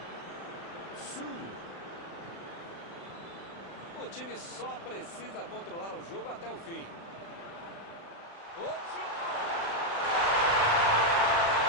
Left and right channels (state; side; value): late; right; 36 ms